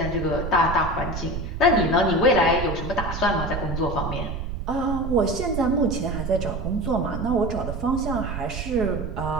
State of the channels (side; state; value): right; noise; rumble, 5 dB below the sound